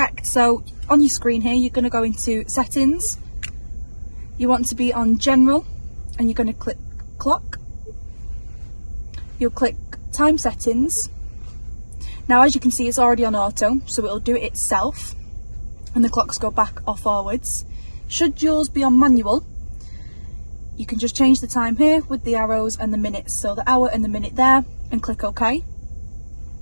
So on your screen here, you're going to go into settings. You want to be on general and you're going to click clock. You'll click time settings. Now as you can see, it's already on auto, so it'll do it itself and the clocks go back or forwards. Should yours be on manual, you can just change the time here with the arrows and the minutes, so the hour and the minute there, and click OK.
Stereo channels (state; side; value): inverted; both; correlation -1.00